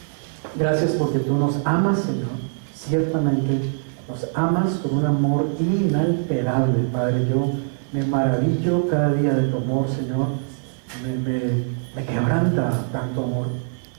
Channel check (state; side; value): silent; left; digital silence